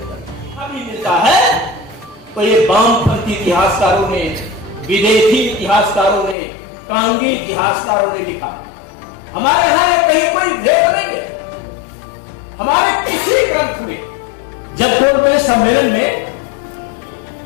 अभी मिलता है तो ये वामपंथी इतिहासकारों ने, विदेशी इतिहासकारों ने, कांगी इतिहासकारों ने लिखा। हमारे यहां कहीं कोई भेद नहीं है। हमारे किसी ग्रंथ में जब कोई सम्मेलन में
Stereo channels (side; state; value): right; drops out; at 6.4 s